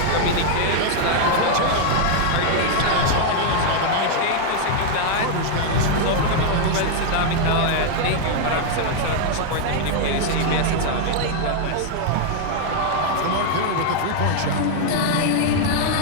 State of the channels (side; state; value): both; different; correlation 0.00